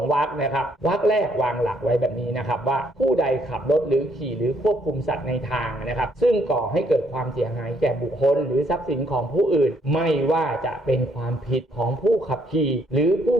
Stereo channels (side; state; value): both; normal; correlation 0.69